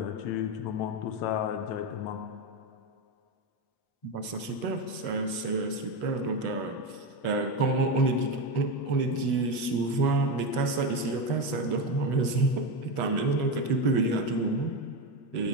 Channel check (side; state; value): right; late; 8.1 ms